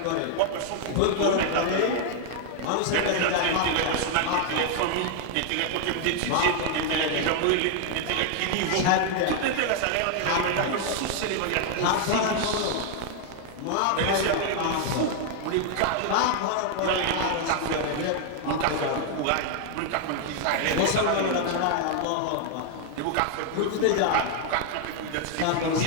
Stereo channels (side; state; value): both; different; correlation 0.00